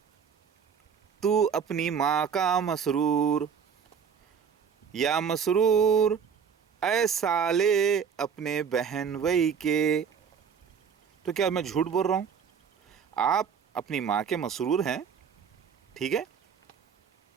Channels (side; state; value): left; quieter; 6.9 dB